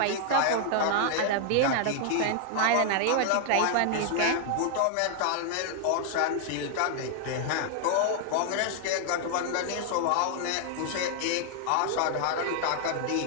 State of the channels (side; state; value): both; different; correlation 0.00